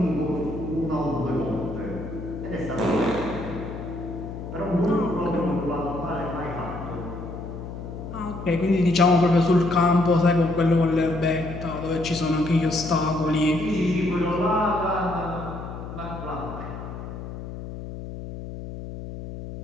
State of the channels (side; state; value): left; noise; hum, 9 dB below the sound